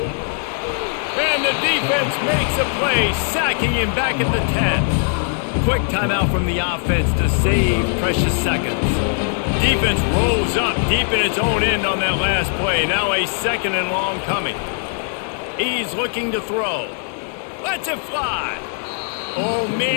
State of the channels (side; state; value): right; silent; 64 dB below the other